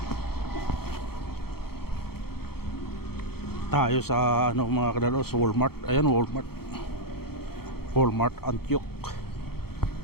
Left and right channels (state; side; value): late; right; 0.95 ms